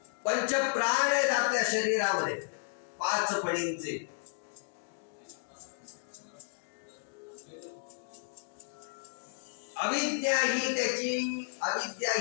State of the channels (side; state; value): right; silent; digital silence